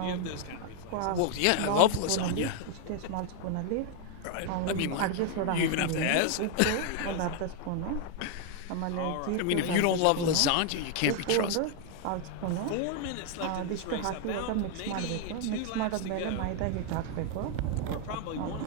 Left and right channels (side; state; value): both; different; correlation 0.00